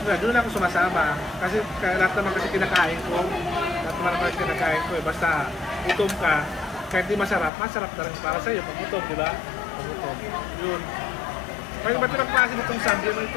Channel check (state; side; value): drops out; right; at 7.5 s